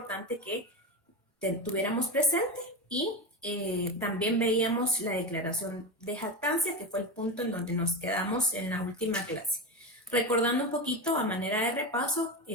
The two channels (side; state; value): both; normal; correlation 0.19